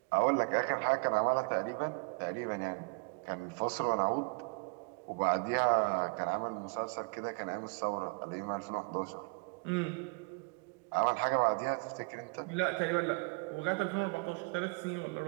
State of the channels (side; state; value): left; quieter; 32.9 dB